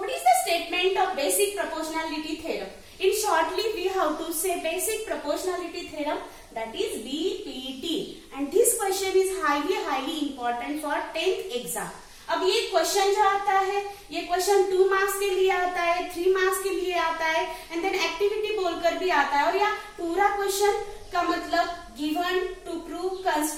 is the statement of basic proportionality theorem? In shortly, we have to say basic proportionality theorem, that is BPT. And this question is highly important for 10th exam. अब ये क्वेश्चन जो आता है, ये क्वेश्चन 2 मार्क्स के लिए आता है, 3 मार्क्स के लिए आता है, एंड देन एक्टिविटी बोलकर भी आता है। और यह पूरा क्वेश्चन का मतलब given, to prove,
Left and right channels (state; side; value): identical; both; correlation 1.00